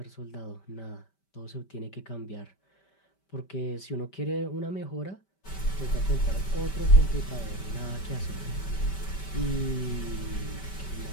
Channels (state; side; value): late; right; 5.2 ms